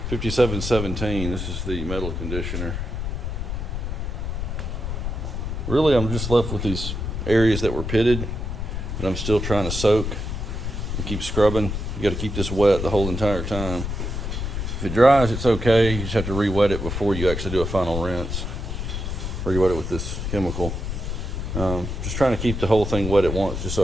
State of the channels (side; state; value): left; noise; rumble, 4 dB below the sound